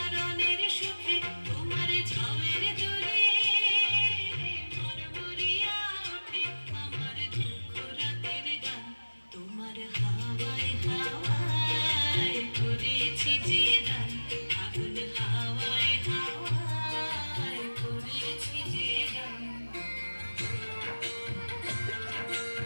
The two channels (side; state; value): both; inverted; correlation -1.00